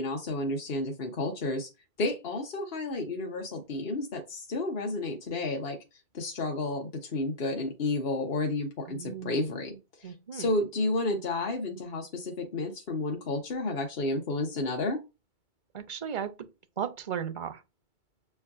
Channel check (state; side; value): late; right; 2.2 ms